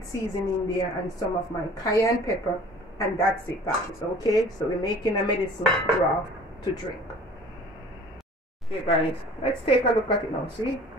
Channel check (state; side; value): normal; both; correlation 0.47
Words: seasoning there and some of my cayenne pepper, and that's it, guys. Okay, so we're making a medicine broth to drink. Okay guys, let's take a look at it now. See,